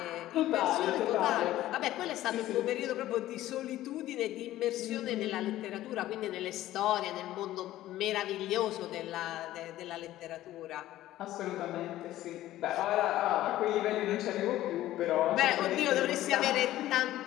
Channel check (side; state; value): right; quieter; 14.6 dB